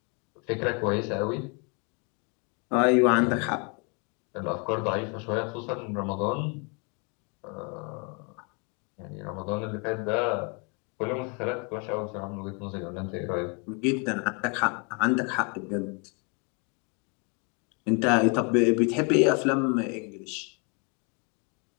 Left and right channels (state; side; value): quieter; right; 34.2 dB